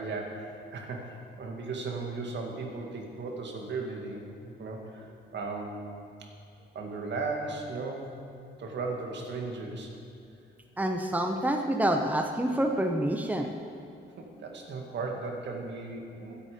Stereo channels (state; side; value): normal; both; correlation 0.62